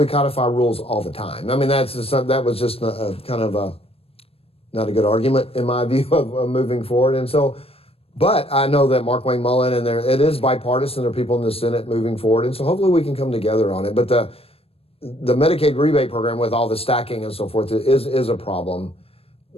codify rules all the time. I mean, that was just kind of not a good argument in my view of moving forward. And so, but I know that Mark Wayne Mullen and it is bipartisan. There are people in the Senate moving forward, and so hopefully we can come together on it. But the Medicaid rebate program with all the stacking and so forth is a problem.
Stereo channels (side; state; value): right; late; 0.28 ms